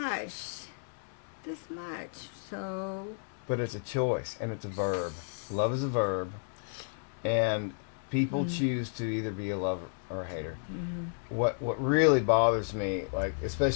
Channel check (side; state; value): right; silent; digital silence